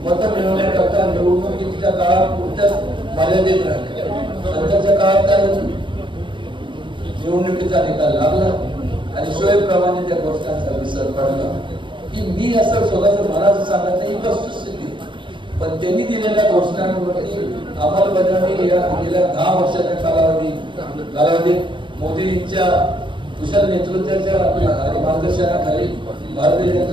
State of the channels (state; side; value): late; left; 0.24 ms